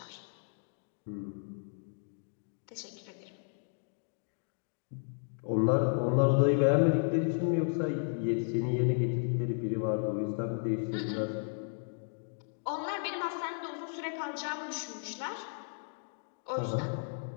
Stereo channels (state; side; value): silent; right; digital silence